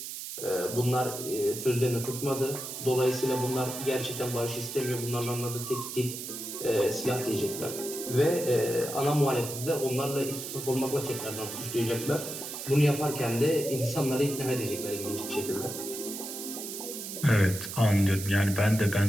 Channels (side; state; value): right; noise; hiss, 8 dB below the sound